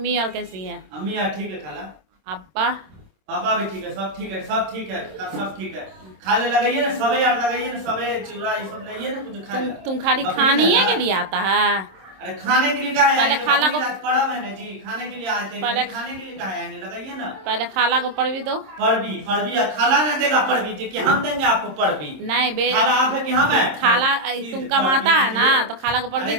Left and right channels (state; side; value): late; left; 26 ms